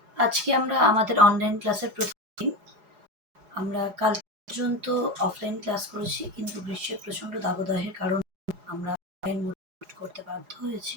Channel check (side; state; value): left; late; 4.8 ms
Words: আজকে আমরা আমাদের অনলাইন ক্লাসের প্রথম দিন। আমরা কাল পর্যন্ত অফলাইন ক্লাস করেছি, কিন্তু গ্রীষ্মের প্রচণ্ড দাবদাহের কারণে আমরা অনলাইন মোড করতে বাধ্য হয়েছি।